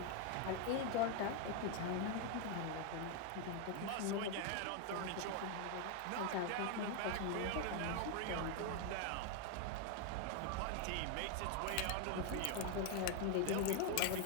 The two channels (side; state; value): both; different; correlation 0.01